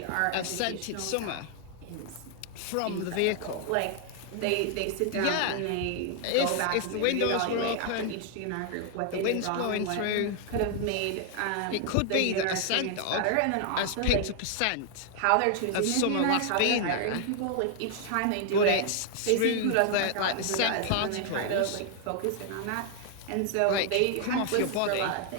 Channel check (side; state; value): both; different; correlation 0.00